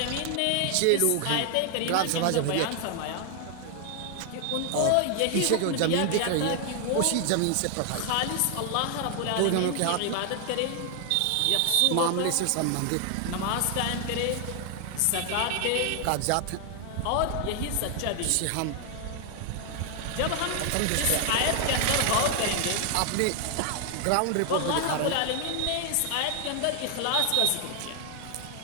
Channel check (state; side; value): different; both; correlation 0.00